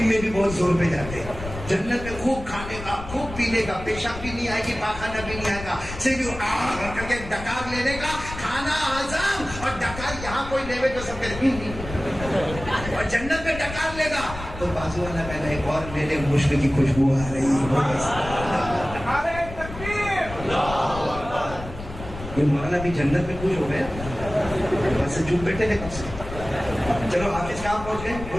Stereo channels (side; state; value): left; noise; rumble, 11 dB below the sound